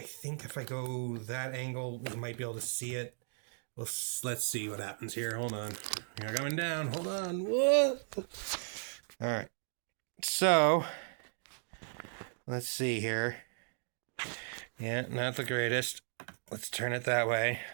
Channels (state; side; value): silent; left; digital silence